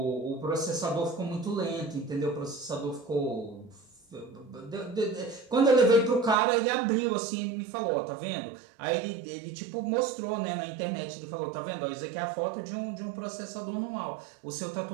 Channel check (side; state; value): left; drops out; at 6.4 s